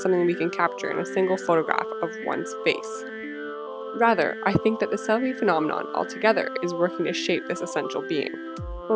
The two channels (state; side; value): identical; both; correlation 1.00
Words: something we can capture in a single photograph of one's face. Rather, I think that the selfie phenomenon altogether is working to shape this essential being.